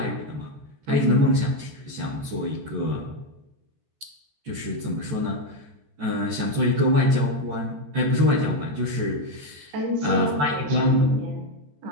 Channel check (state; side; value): late; left; 14 ms